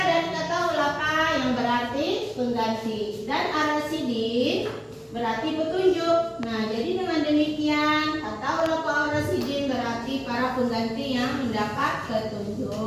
dari kata khulafa yang berarti pengganti dan ar-rasyidin berarti petunjuk. Nah, jadi dengan demikian kata Khulafaur Rasyidin berarti para pengganti yang mendapat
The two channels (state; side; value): identical; both; correlation 1.00